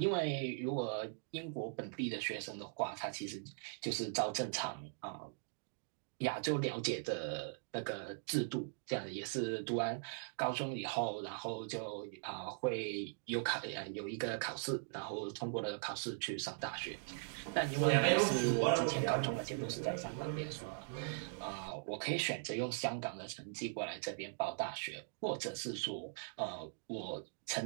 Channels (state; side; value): silent; left; digital silence